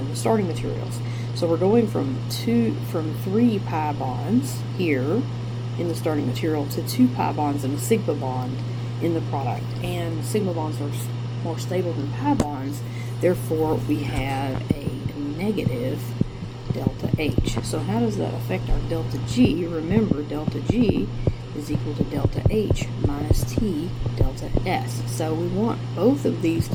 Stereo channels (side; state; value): both; identical; correlation 1.00